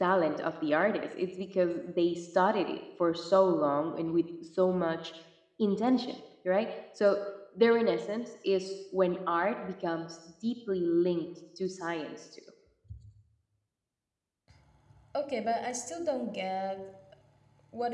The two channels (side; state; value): both; identical; correlation 1.00